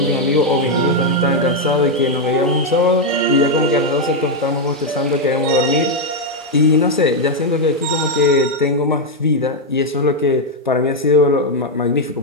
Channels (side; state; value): both; normal; correlation 0.02